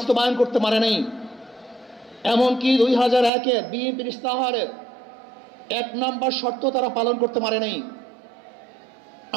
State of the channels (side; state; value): left; drops out; at 3.3 s